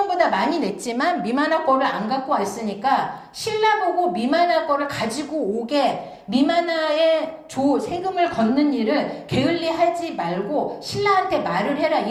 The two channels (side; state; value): both; identical; correlation 1.00